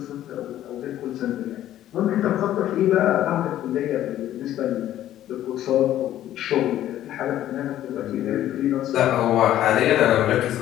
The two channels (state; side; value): quieter; right; 12.6 dB